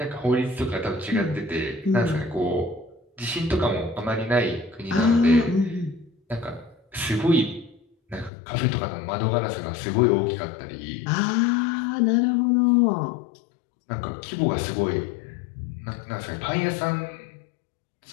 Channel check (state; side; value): drops out; right; at 8.3 s